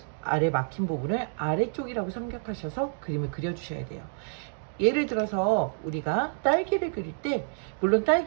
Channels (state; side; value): silent; left; digital silence